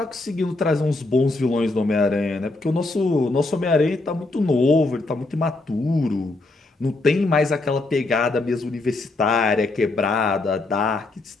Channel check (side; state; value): right; quieter; 3.1 dB